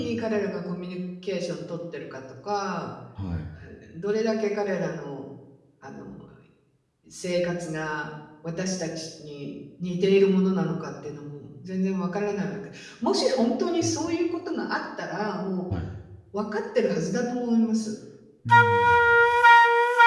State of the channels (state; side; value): identical; both; correlation 1.00